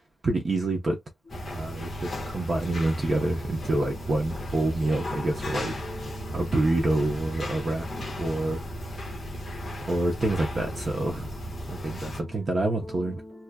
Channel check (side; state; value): both; normal; correlation 0.89